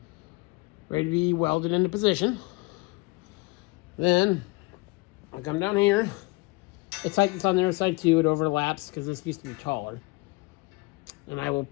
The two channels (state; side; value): quieter; right; 24.5 dB